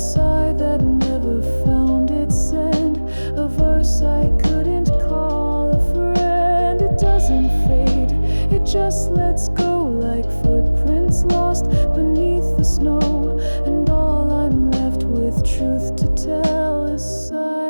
that never found its end, a verse I couldn't call a friend. It doesn't fade, it just lets go like footprints lost beneath the snow. And all I'm left with, truth to tell, is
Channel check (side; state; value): both; inverted; correlation -1.00